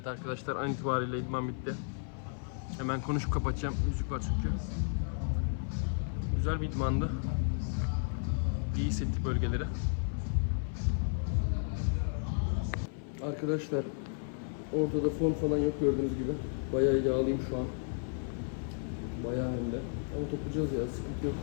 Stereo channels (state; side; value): silent; right; 56 dB below the other